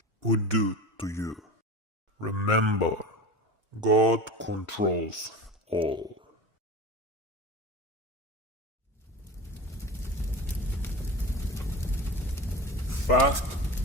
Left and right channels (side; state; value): both; normal; correlation 0.31